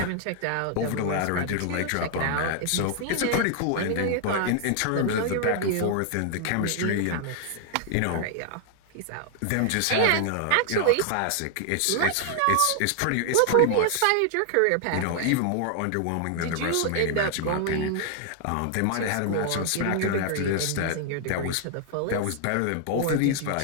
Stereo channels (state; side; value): different; both; correlation 0.00